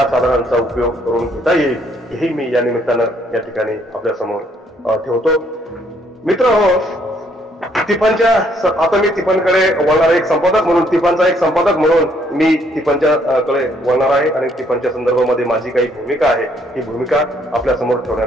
साधनांचा उपयोग करून घेता येईल हेही मी या निमित्तानं या ठिकाणी आपल्या समोर ठेवतो. मित्रहो, तिफनच्या, आता मी तिफनकडे वळणार, एक संपादक म्हणून, तिफनचा एक संपादक म्हणून मी तिफनच्या कडे वळणार आहे आणि तिफनच्या संदर्भामध्ये माझी काही भूमिका आहे, ही भूमिका आपल्या समोर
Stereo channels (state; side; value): normal; both; correlation 0.68